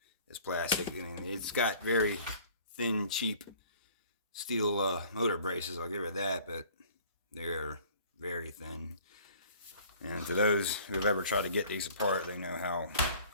is plastic. I mean, it's got very thin, cheap steel motor braces. I'll give it that, but they're very thin. And to those who have ever tried to get these apart, they know how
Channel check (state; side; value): inverted; both; correlation -0.51